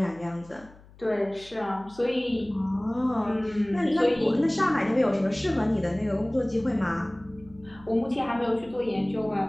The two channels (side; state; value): left; noise; hum, 23 dB below the sound